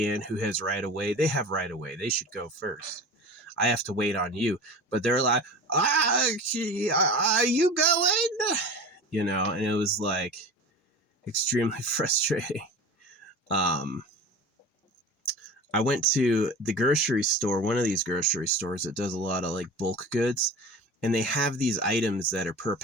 who has right of way. They have right of way. They should go first. I have to wait on you. But they're like, are you going? And it was like extremely frustrating. Um, I went to the grocery store, one of these grocery stores that does a lot of like bulk goods, and they have these items that are per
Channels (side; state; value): both; normal; correlation 0.34